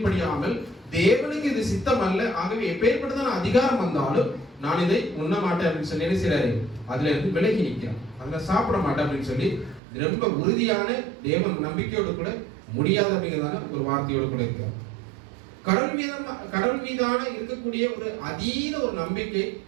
தேவனுக்கு இது சித்தம் அல்ல, ஆகவே எப்பேற்பட்டதான அதிகாரம் வந்தாலும் நான் இதை உண்ண மாட்டேன் அப்படின்னு சொல்லி என்ன செய்யறாரு, அதுல இருந்து விலகி நிற்கிறான். அதுல சாப்பிட மாட்டேன் அப்படின்னு சொல்லி ரொம்ப உறுதியான தேவன் நம்பிக்கையோடு கூட முடியாது அப்படிங்கிறதான ஒரு வார்த்தையோடு கூட இருக்கிறார். கடவுள் மீதான இருக்கக்கூடிய ஒரு அதீத ஒரு நம்பிக்கை,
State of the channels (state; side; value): drops out; left; at 9.8 s